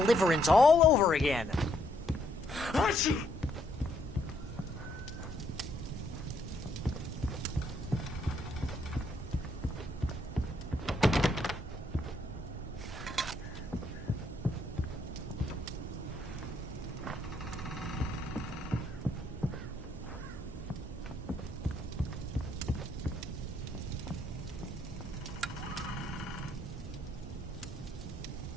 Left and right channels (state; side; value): normal; both; correlation 0.72